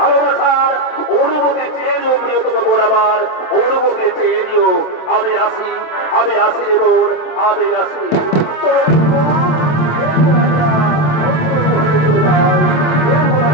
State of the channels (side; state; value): right; late; 27 ms